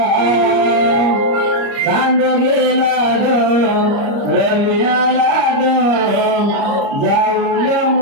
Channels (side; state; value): left; late; 30 ms